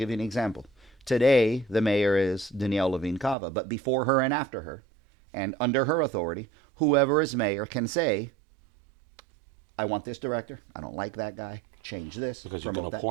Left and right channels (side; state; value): left; drops out; at 3.4 s